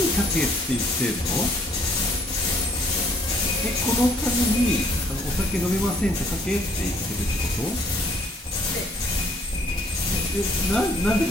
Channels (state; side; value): normal; both; correlation 0.62